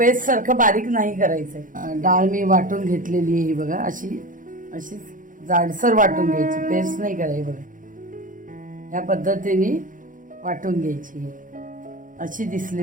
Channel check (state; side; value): late; left; 0.39 ms